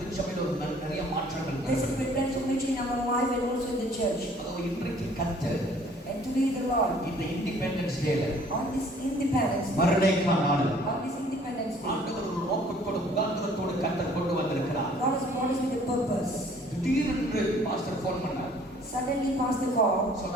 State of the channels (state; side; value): normal; both; correlation 0.56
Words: திருச்சபையில் நிறைய மாற்றங்கள் there's a great transformation in our life and also in the church. அதாவது இன்றைக்கு கர்த்தர் And today the Lord, இந்த இண்டிபெண்டன்ஸ் டேல on this Independence Day, மறுநேக்க நாள் on this Independence Day, ஆண்டவர் ஒரு நோக்கத்தோடு முகாந்திரத்தோடு கர்த்தர் கொண்டு வந்திருக்கிறார். God has brought us with a purpose. திடீரென்று பாஸ்டர் ஃபோன் பண்ணார். Suddenly Pastor called.